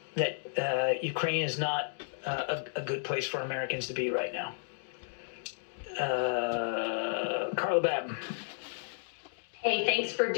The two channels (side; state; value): right; silent; digital silence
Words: that Ukraine is not a good place for Americans to be right now. Carla Batten. Hey, thanks for